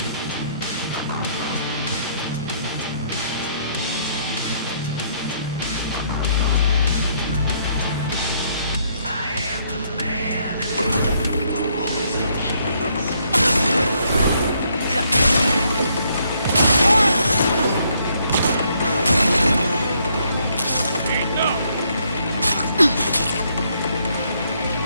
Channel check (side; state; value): both; inverted; correlation -0.70